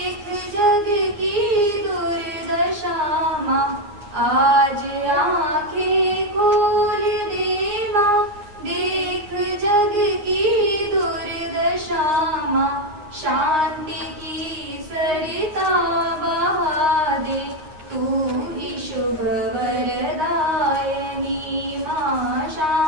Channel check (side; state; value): left; late; 9.7 ms